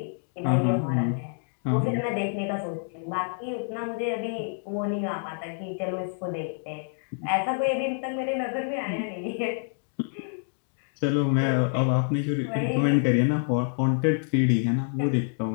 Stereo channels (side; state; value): right; silent; 57 dB below the other